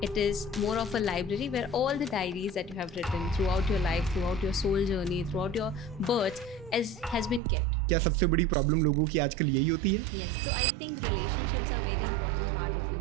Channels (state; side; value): drops out; left; at 7.4 s